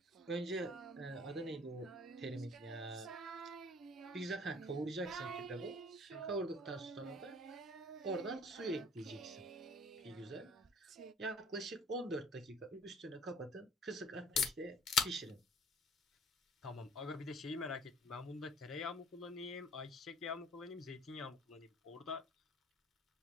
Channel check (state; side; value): normal; both; correlation 0.53